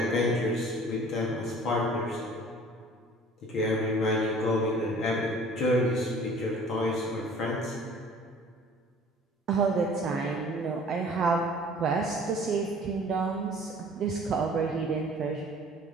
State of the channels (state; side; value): normal; both; correlation 0.49